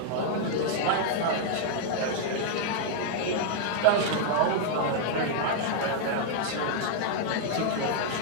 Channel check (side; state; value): both; different; correlation 0.00